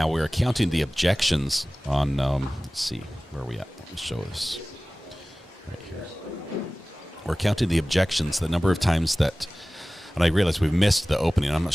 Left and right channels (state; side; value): normal; both; correlation 0.98